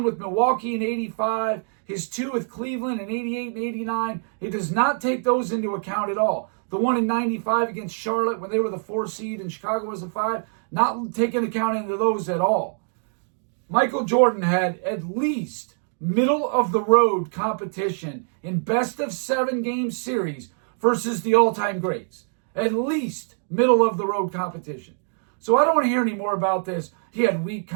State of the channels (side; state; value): left; silent; digital silence